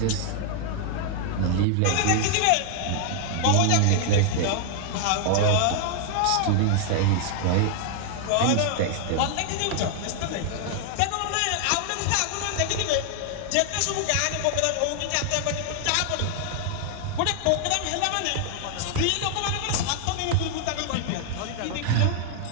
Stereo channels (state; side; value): different; both; correlation 0.00